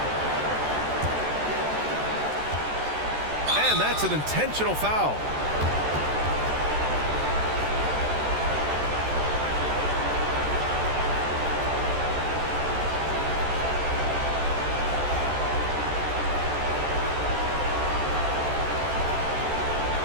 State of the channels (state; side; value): late; left; 14 ms